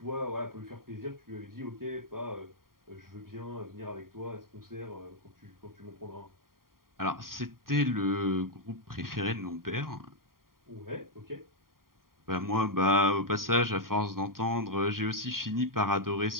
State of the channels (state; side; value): late; left; 0.92 ms